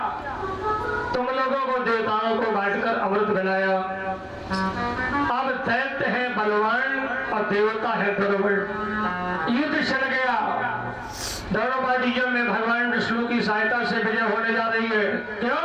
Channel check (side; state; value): both; identical; correlation 1.00